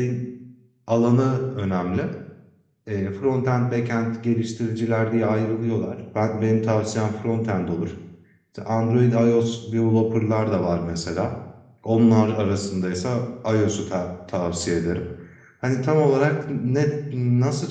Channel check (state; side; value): identical; both; correlation 1.00